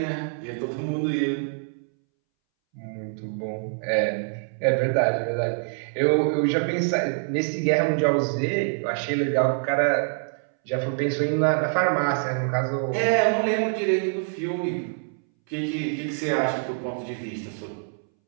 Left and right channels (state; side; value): silent; left; 61 dB below the other